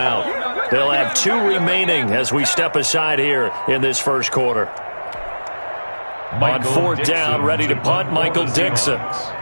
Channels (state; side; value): inverted; both; correlation -1.00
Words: They'll have 2 remaining as we step aside here in this first quarter. On 4th down, ready to punt, Michael Dixon.